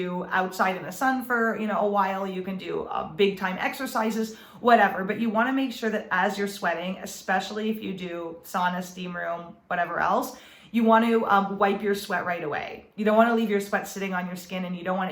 outside in the sun for a while. You can do big time exercises, whatever. But you want to make sure that as you're sweating, especially if you do sauna, steam room, whatever else, you want to wipe your sweat right away. You don't want to leave your sweat sitting on your skin, and you don't want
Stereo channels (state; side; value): identical; both; correlation 1.00